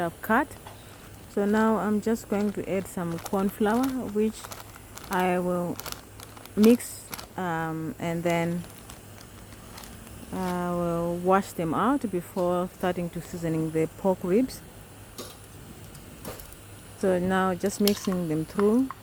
cut. So now I'm just going to add some corn flour, which I will mix, and then I will wash them out before starting to seasoning the pork ribs. So now just mixing them through.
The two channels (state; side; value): identical; both; correlation 1.00